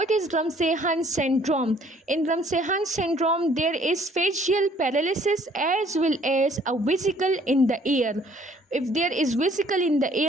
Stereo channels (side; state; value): both; normal; correlation 0.59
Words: is Ramsay-Hunt syndrome? In Ramsay-Hunt syndrome, there is facial paralysis as well as a vesicle in the ear. If there is vesicle in the